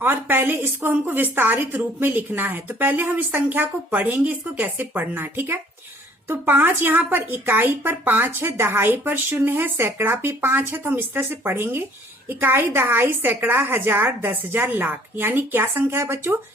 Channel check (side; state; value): both; normal; correlation 0.57